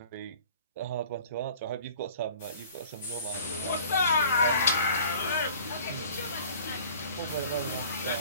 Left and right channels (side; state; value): both; inverted; correlation -0.48